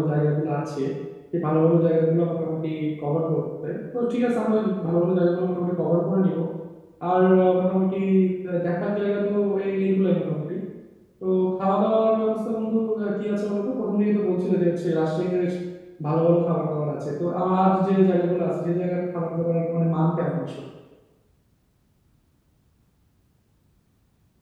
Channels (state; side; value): identical; both; correlation 1.00